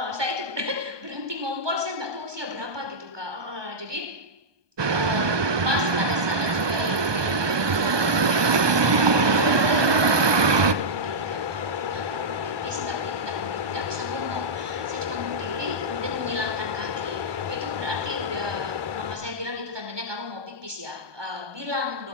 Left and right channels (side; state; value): left; late; 1.2 ms